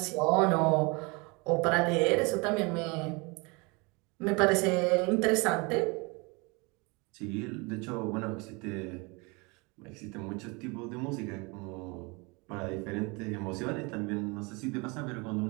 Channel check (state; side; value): quieter; left; 28.4 dB